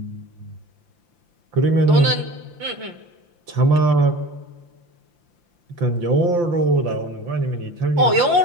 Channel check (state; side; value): late; left; 5.8 ms